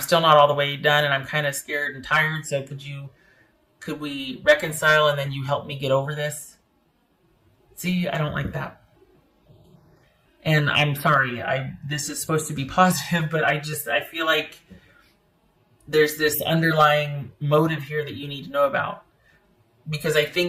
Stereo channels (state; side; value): identical; both; correlation 1.00